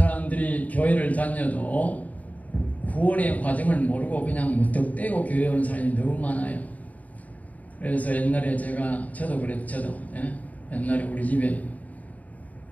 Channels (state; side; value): late; right; 0.073 ms